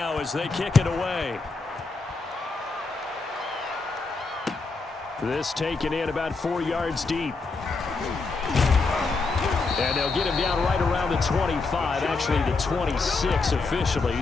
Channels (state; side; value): quieter; right; 3.9 dB